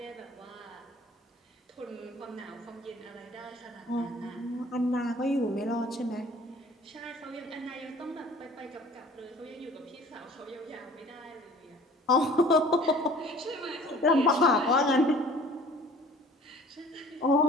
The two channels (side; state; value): both; normal; correlation 0.49